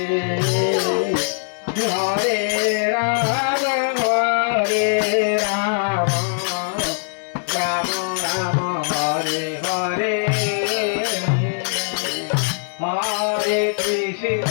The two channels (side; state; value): right; silent; 65 dB below the other